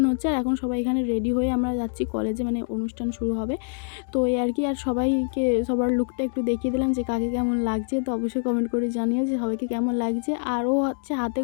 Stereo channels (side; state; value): right; silent; digital silence